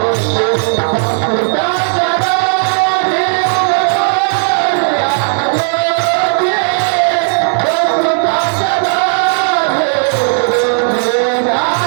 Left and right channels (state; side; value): silent; left; 55 dB below the other